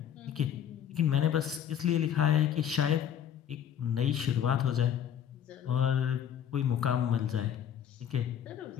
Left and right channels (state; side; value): quieter; right; 9.3 dB